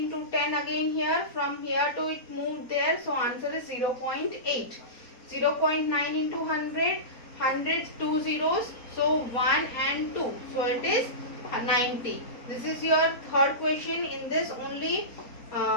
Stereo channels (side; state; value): right; late; 4.3 ms